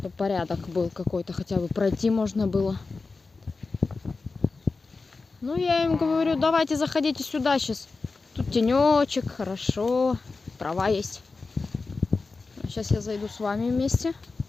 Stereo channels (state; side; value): quieter; right; 4.0 dB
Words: порядок был какой-то. Хотя бы пройти можно было. Ну, я им говорю, давайте заходите сюда сейчас. Тут тенечек, хорошо. Трава есть. Сейчас я зайду с вами вместе.